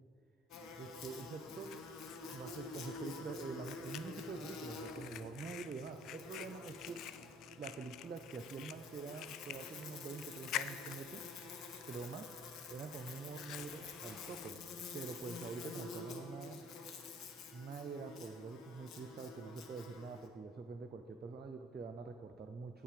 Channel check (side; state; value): both; normal; correlation 0.54